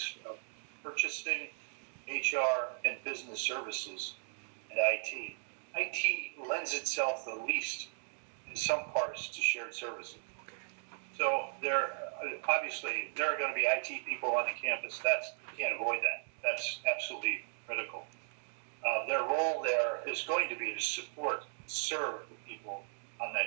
of purchasing, HR, and business services, and IT lends itself the least in some parts to shared services. So obviously there are going to be IT people on the campus. You can't avoid that. That's absolutely critical. Their role there is going to be to serve the people on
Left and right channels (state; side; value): silent; left; digital silence